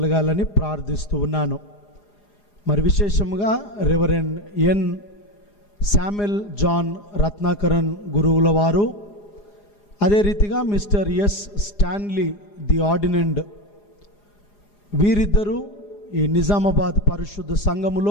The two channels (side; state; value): right; late; 4.9 ms